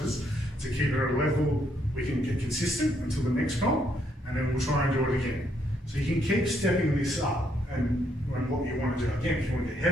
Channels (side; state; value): both; normal; correlation 0.73